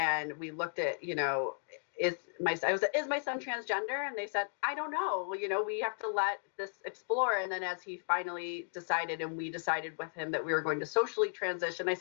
we looked at, is my son transgender? And they said, I don't know. We have to let this explore. And then as he finally decided, and we decided with him that we were going to socially transition, I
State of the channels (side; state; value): right; silent; digital silence